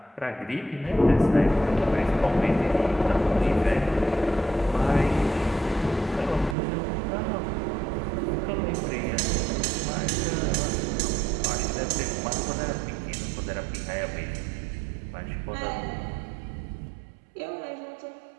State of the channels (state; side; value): drops out; left; at 6.6 s